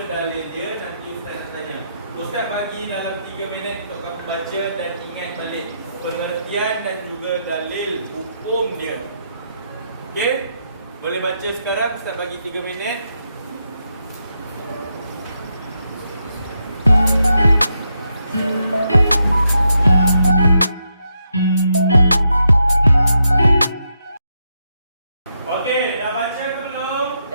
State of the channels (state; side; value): inverted; both; correlation -0.82